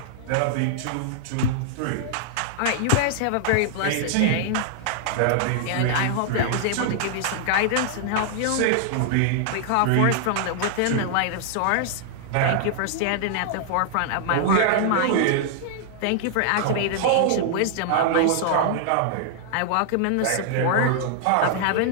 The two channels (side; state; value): both; different; correlation -0.01